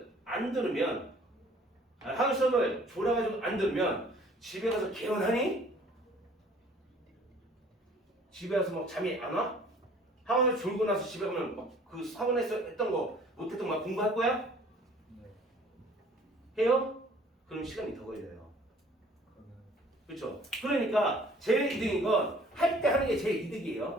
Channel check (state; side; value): normal; both; correlation 0.54